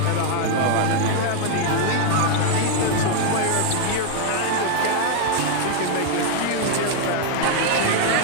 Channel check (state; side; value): different; both; correlation 0.00